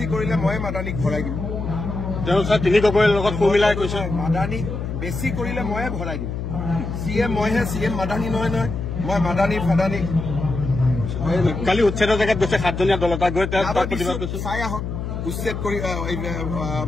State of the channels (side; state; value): left; noise; hum, 5 dB below the sound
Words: কৰিলে মই মাদানীক ভৰাই দিম। তেওঁ তিনি গগৈৰ লগত সুমিলাই কৈছে মাদানী বেছি কৰিলে ময়ে ভৰাই দিম। চিএম মইহে, চিএম মাদানী নহয় নহয়। মই মাদানী ফাদানী কালি উচ্ছেদৰ জেগাত গৈছে 7জনীয়া দল এটা গৈ প্ৰতিবাদ কৰিছে। চাই আহক উচ্ছেদ কৰি